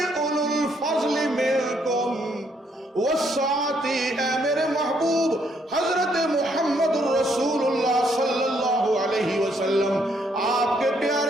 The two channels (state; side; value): normal; both; correlation 0.71